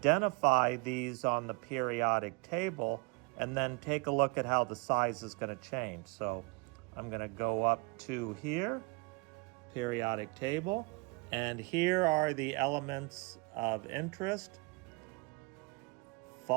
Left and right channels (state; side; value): quieter; left; 28.6 dB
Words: these on the periodic table and then take a look at how the size is going to change. So I'm going to go up to here, periodic table. And here are the elements of interest: